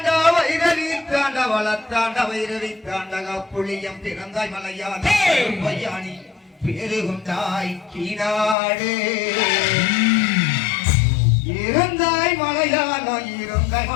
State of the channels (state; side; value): drops out; right; at 8.6 s